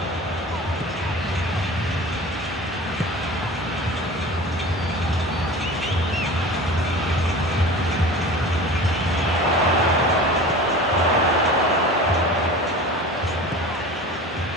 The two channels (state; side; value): normal; both; correlation 0.37